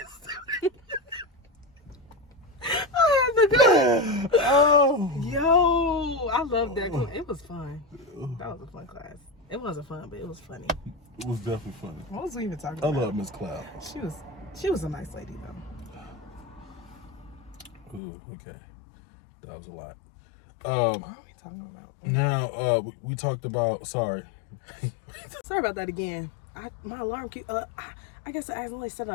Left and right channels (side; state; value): right; drops out; at 18.0 s